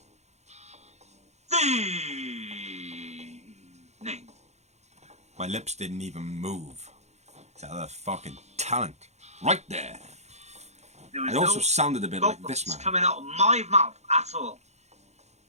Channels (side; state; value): left; late; 0.32 ms